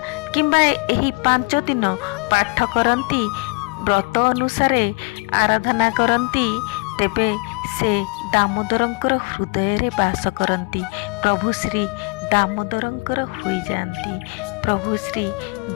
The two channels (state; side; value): quieter; right; 30.3 dB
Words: କିମ୍ବା ଏହି 5 ଦିନ ପାଠ କରନ୍ତି, ବ୍ରତ ଅନୁସାରେ ଆରାଧନା କରନ୍ତି, ତେବେ ସେ ଦାମୋଦରଙ୍କର ହୃଦୟରେ ବାସ କରନ୍ତି। ପ୍ରଭୁ ଶ୍ରୀ ଦାମୋଦରଙ୍କର ହୋଇଯାଆନ୍ତି। ପ୍ରଭୁ ଶ୍ରୀ